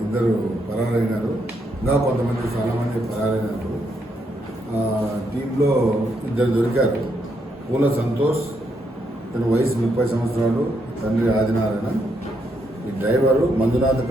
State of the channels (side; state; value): both; normal; correlation 0.77